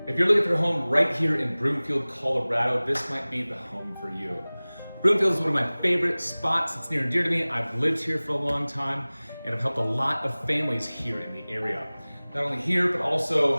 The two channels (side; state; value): both; inverted; correlation -1.00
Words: If you're looking for a home right here in Broomfield, Colorado, this might be the home for you. Broomfield is one of my favorite spots. It's near and dear to me. I've lived here for a long time and I've helped a lot of families here in the area. Not only here, but